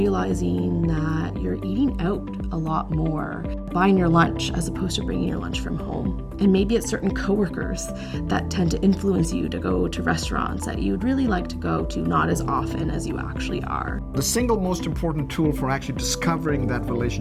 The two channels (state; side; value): identical; both; correlation 1.00